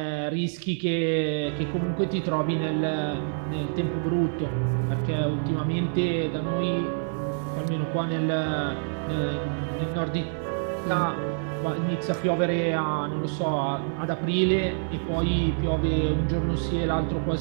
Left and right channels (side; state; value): left; silent; 57 dB below the other